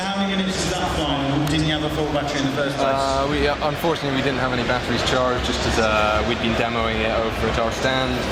how many minutes was that flying? Didn't you have a full battery in the first place? Unfortunately, we didn't have any batteries charged, just as we'd been demoing it over at our stand.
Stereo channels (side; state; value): both; identical; correlation 1.00